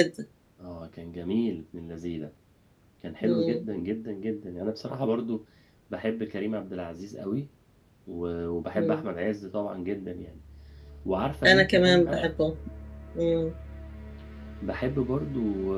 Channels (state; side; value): identical; both; correlation 1.00